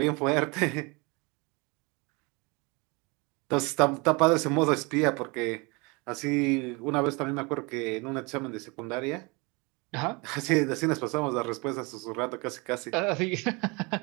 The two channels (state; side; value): quieter; left; 27.9 dB